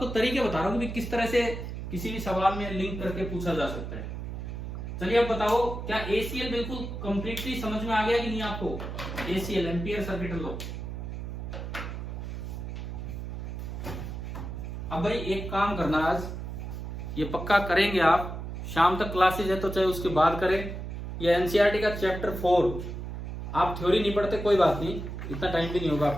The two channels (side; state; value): right; noise; hum, 7 dB below the sound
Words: तरीके बता रहा हूं कि किस तरह से किसी भी सवाल में लिंक करके पूछा जा सकता है। चलिए अब बताओ, क्या ACL बिल्कुल कंप्लीटली समझ में आ गया कि नहीं आपको? ACL ampere circuit law. अब भाई एक काम करना, आज ये पक्का करेंगे आप, शाम तक क्लासेज है तो चाहे उसके बाद करें। ये एनसीईआरटी का चैप्टर 4, आप थ्योरी नहीं पढ़ते कोई बात नहीं, इतना टाइम भी नहीं होगा